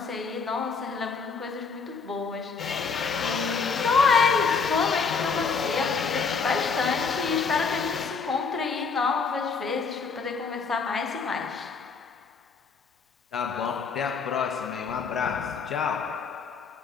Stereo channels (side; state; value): right; quieter; 5.2 dB